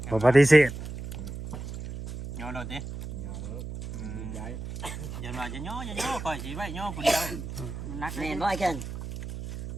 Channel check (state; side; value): noise; right; hum, 8 dB below the sound